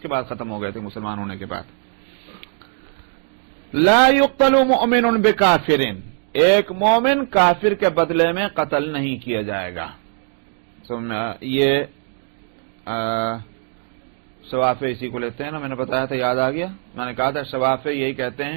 کے بعد ختم ہو گئے تھے مسلمان ہونے کے بعد. لا يقتل مؤمن بکافر، ایک مومن کافر کے بدلے میں قتل نہیں کیا جائے گا. یہ شوافے اسی کو لیتے ہیں نا، میں نے بتایا تھا، یاد آ گیا. میں نے کہا تھا شوافے یہی کہتے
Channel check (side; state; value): left; silent; 58 dB below the other